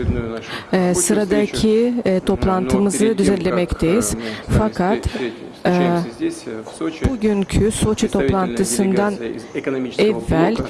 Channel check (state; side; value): identical; both; correlation 1.00